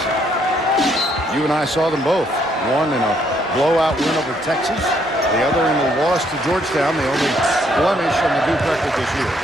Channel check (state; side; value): normal; both; correlation 0.70